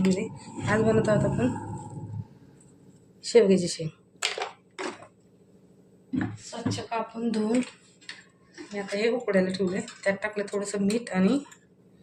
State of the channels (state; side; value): identical; both; correlation 1.00